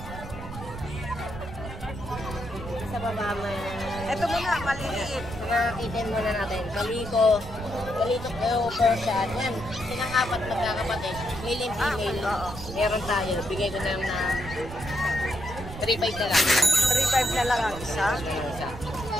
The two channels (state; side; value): noise; right; rumble, 11 dB below the sound